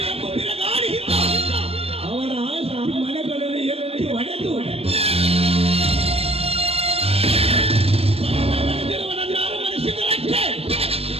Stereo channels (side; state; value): left; late; 0.29 ms